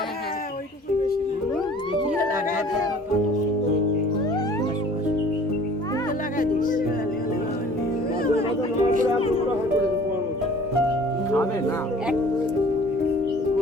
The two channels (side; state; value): both; normal; correlation 0.49